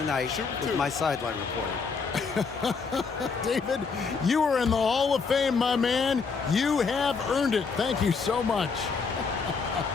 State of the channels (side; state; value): right; quieter; 5.0 dB